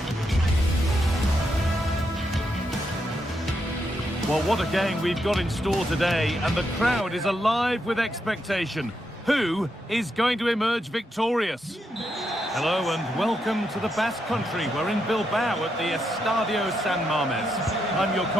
Well, what a game we've got in store today, and the crowd is alive with expectation. Who is going to emerge victorious? Hello and welcome to the Basque Country. We're in Bilbao at the Estadio San Mamés. I'm your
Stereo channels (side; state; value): both; normal; correlation 0.82